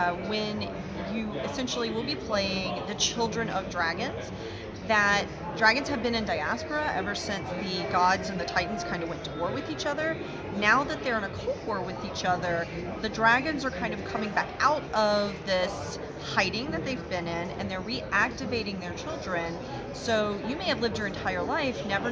when you essentially will be playing the children of dragons, that dragons have been in diaspora ever since the gods and the titans kind of went to war with each other. Now that they're in a cold war with each other, the dragons are kind of coming back out of this hiding that they've been in, and they're reactivating their children. So you may have lived your entire life never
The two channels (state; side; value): identical; both; correlation 1.00